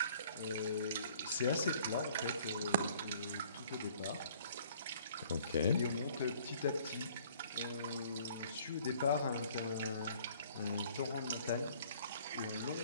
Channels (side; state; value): both; inverted; correlation -0.56